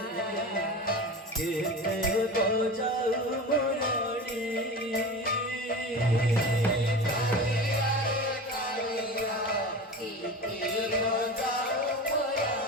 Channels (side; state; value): both; normal; correlation 0.30